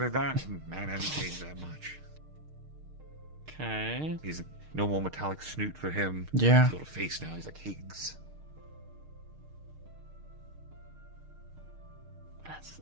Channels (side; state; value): left; late; 6.5 ms